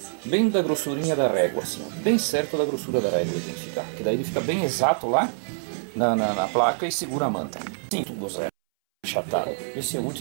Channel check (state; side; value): silent; left; 61 dB below the other